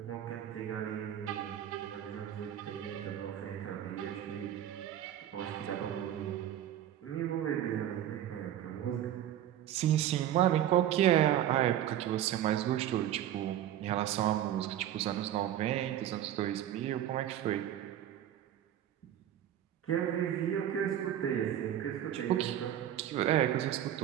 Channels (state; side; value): quieter; left; 11.5 dB